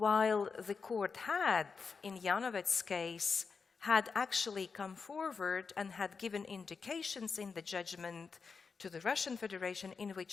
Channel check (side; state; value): right; quieter; 5.2 dB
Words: the court had, in Janovec's case, had actually come forward and had given indications in the judgment to the Russian Federation in